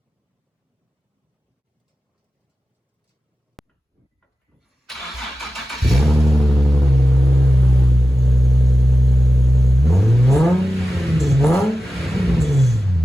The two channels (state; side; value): normal; both; correlation 0.93